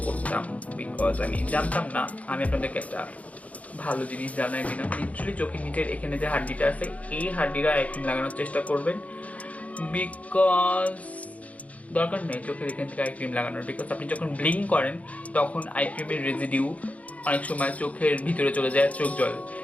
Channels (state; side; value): late; right; 0.068 ms